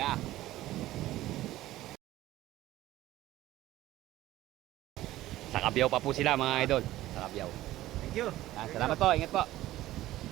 Sa Kabiyaw pa po sila mga idol. Sa Kabiyaw. Thank you. Salamat po, ingat po.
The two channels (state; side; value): quieter; left; 15.4 dB